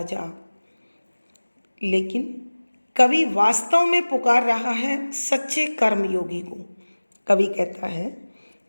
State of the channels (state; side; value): inverted; both; correlation -1.00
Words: जा। लेकिन कवि वास्तव में पुकार रहा है सच्चे कर्मयोगी को। कवि कहता है